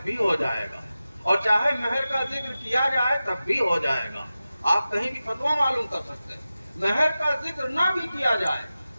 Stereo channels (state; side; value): inverted; both; correlation -0.94